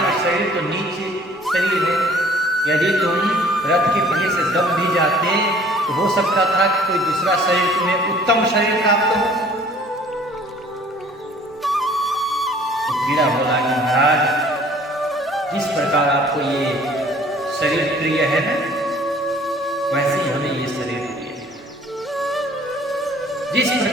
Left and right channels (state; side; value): normal; both; correlation 0.53